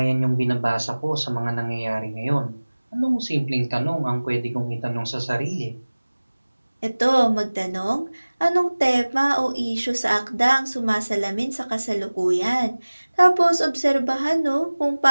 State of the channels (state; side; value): inverted; both; correlation -1.00